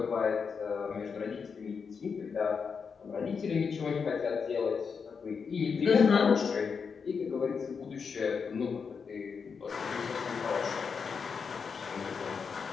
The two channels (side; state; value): right; quieter; 5.8 dB